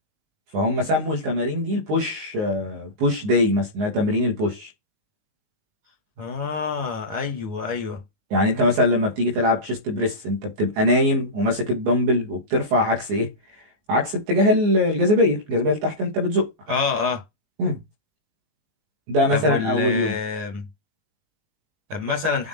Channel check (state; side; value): late; left; 19 ms